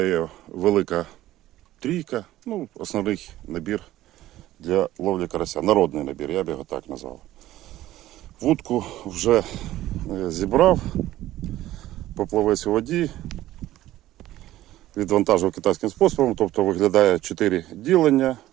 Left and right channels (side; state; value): left; quieter; 14.8 dB